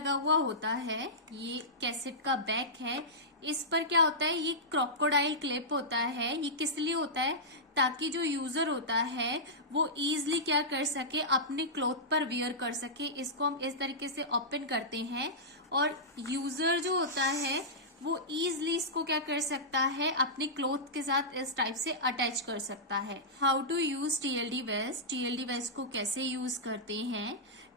हुआ होता है। ये कैसेट का बैक है, इस पर क्या होता है? ये क्रोकोडाइल क्लिप होता है। ये किस लिए होता है? ताकि जो यूजर होता है वो इजीली क्या कर सके? अपने क्लॉथ पर वियर कर सके। इसको हम इस तरीके से ओपन करते हैं और यूजर जो होता है वो इजीली इसको क्या कर सकता है? अपने क्लॉथ के साथ इस टाइप से अटैच कर सकता है। How to use TLD vest. TLD vest को कैसे यूज करते हैं?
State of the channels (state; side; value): normal; both; correlation -0.13